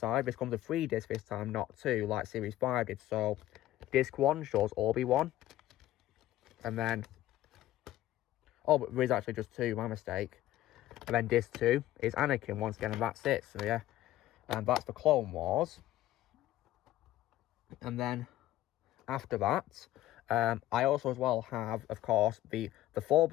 this comes with 3 discs this time, not 2, like series 5 did. So disc 1 shows Obi-Wan. And then, oh, but there is actually just 2, my mistake. And then disc 2 is Anakin once again, and that's it. So yeah, and that's the Clone Wars. And then after that, I also as well have, of course, the 4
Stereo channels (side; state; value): right; quieter; 14.2 dB